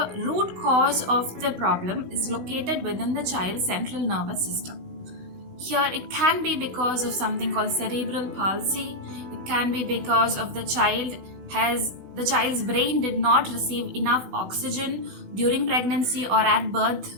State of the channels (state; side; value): late; left; 16 ms